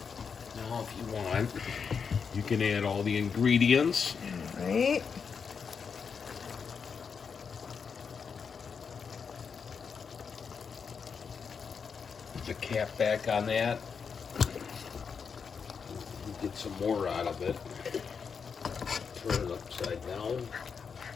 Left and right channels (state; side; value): quieter; right; 6.1 dB